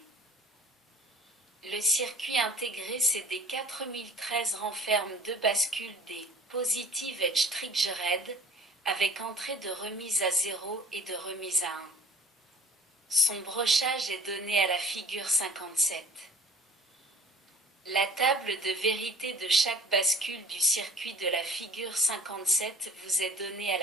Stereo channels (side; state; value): both; normal; correlation 0.50